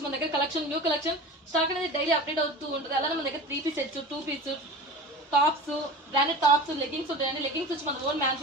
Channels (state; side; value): normal; both; correlation 0.35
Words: మన దగ్గర కలెక్షన్ న్యూ కలెక్షన్ స్టాక్ అనేది డైలీ అప్డేట్ అవుతూ ఉంటుంది. అలానే మన దగ్గర 3 piece sets 2 piece tops branded tops leggings ఉంటాయండి. లెగ్గింగ్స్ వచ్చి మన ఓన్